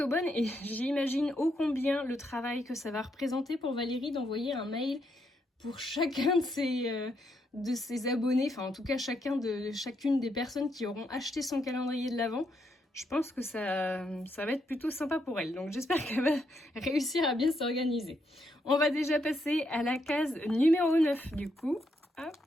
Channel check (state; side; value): normal; both; correlation 0.78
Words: bonne et j'imagine ô combien le travail que ça va représenter pour Valérie d'envoyer un mail pour chacun de ses abonnés, enfin en tout cas chacune des personnes qui auront acheté son calendrier de l'Avent. Je pense que ça va être plutôt sympa pour elle. Donc j'espère qu'elle va réussir à bien s'organiser. On va déjà passer à la case numéro 9 du coup. Hop.